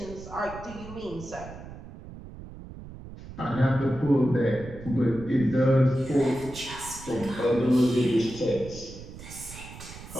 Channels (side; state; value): right; noise; rumble, 14 dB below the sound